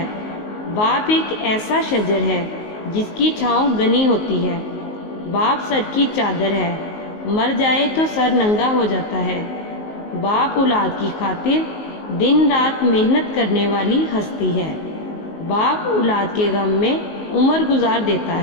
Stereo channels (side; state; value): right; late; 19 ms